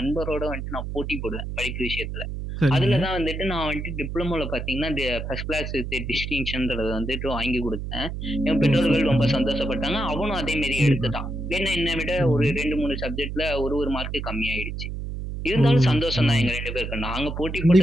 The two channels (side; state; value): right; noise; hum, 6 dB below the sound